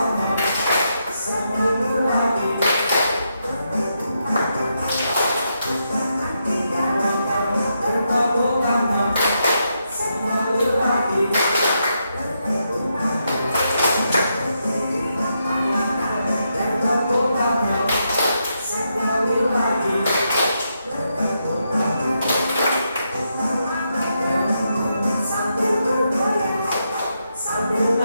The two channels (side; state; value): both; inverted; correlation -0.82